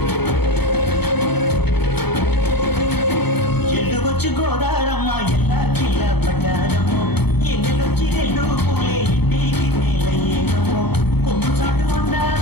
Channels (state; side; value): late; right; 0.98 ms